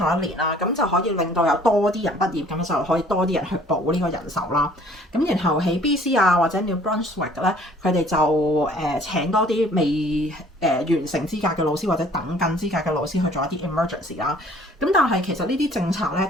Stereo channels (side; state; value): both; normal; correlation 0.55